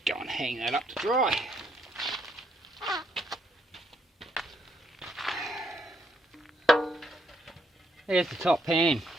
going to hang that up to dry. There's the top pan.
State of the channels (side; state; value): both; normal; correlation 0.73